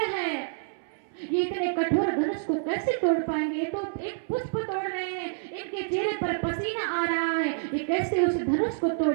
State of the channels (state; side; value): silent; left; 59 dB below the other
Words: है, ये इतने कठोर धनुष को कैसे तोड़ पाएंगे। ये तो एक पुष्प तोड़ रहे हैं, इनके चेहरे पर पसीना आ रहा है, ये कैसे उस धनुष को